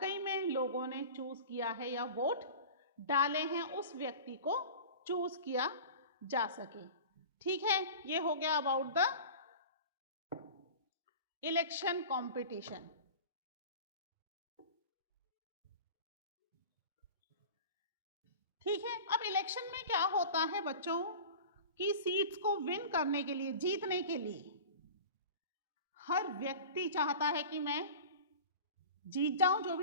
में लोगों ने चूज किया है या वोट डाले हैं, उस व्यक्ति को चूज किया जा सके। ठीक है, ये हो गया अबाउट द इलेक्शन कंपटीशन। ठीक है, अब इलेक्शन में क्या होता है बच्चों कि सीट्स को विन करने के लिए, जीतने के लिए हर व्यक्ति चाहता है कि मैं जीत जाऊं, जो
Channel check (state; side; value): inverted; both; correlation -0.36